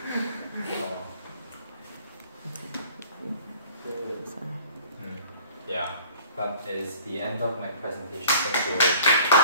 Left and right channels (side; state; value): both; inverted; correlation -0.50